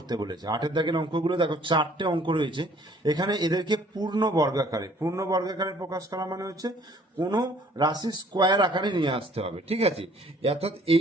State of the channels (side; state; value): both; normal; correlation 0.57